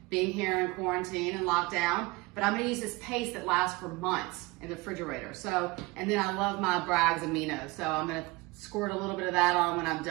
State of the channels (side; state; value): left; quieter; 23.3 dB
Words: being here in quarantine and lockdown. But I'm going to use this paste that lasts for months in the refrigerator. So, and then I love my Bragg's aminos. So I'm going to squirt a little bit of that on when I'm